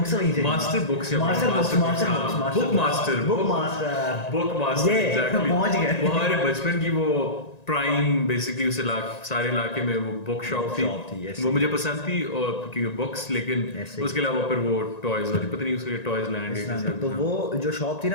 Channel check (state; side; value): late; right; 1.9 ms